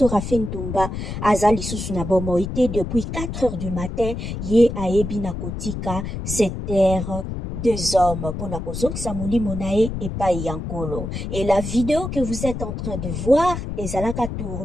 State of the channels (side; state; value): left; noise; rumble, 5 dB below the sound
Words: Rafin Ntumba aza lisusu na bomoite depuis 4 heures du matin ye ayebi na kotika cette terre deux hommes pour na kozongisa molimo na ye epai ya nkolo. Et la vidéo que vous êtes en train de voir ezalaka